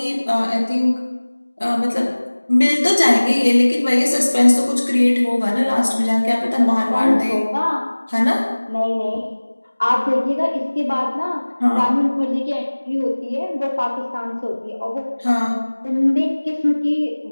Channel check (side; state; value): both; inverted; correlation -1.00